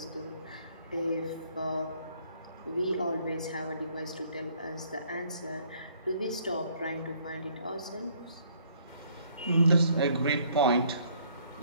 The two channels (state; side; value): inverted; both; correlation -0.64